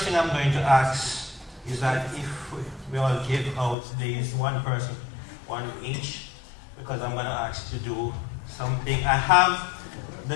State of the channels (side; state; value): right; drops out; at 3.8 s